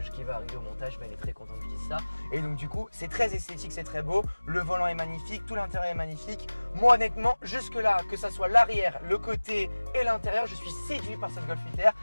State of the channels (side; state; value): both; inverted; correlation -1.00